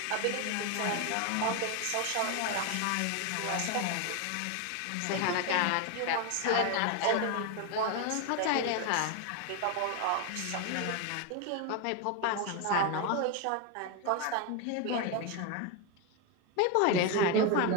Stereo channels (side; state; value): both; different; correlation 0.02